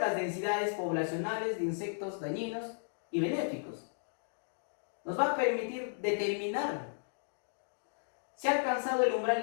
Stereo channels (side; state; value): right; silent; digital silence